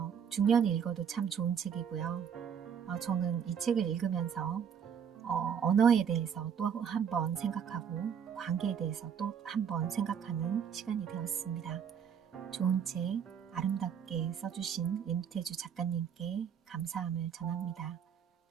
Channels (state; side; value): quieter; left; 7.7 dB